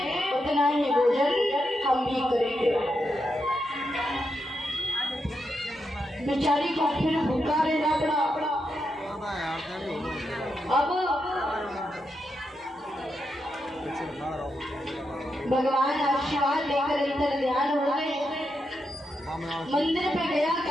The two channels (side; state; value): both; normal; correlation 0.84